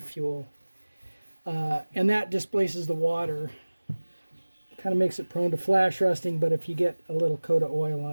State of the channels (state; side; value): inverted; both; correlation -1.00